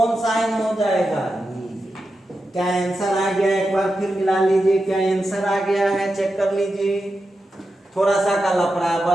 साइन हो जाएगा, क्या आंसर आ गया, एक बार फिर मिला लीजिए, क्या आंसर आ गया है, चेक कर लीजिए। थोड़ा सा का लफड़ा है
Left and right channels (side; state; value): both; normal; correlation 0.89